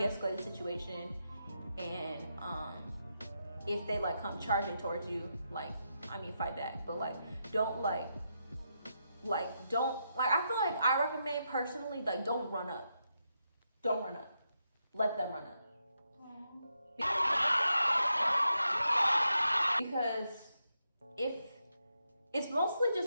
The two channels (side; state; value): both; inverted; correlation -0.84